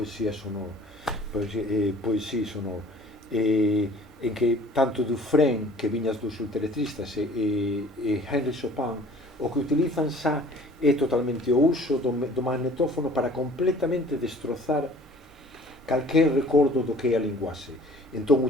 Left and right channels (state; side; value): normal; both; correlation 0.50